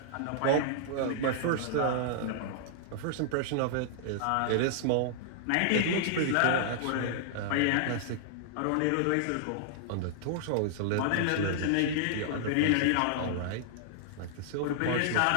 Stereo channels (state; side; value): different; both; correlation -0.01